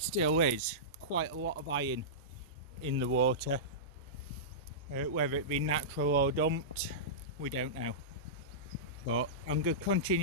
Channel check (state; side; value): normal; both; correlation -0.17